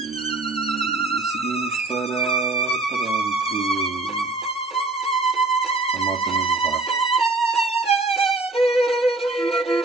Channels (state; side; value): quieter; left; 3.1 dB